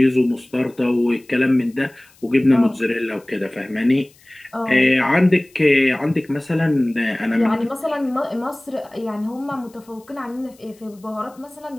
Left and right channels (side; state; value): left; noise; hiss, 29 dB below the sound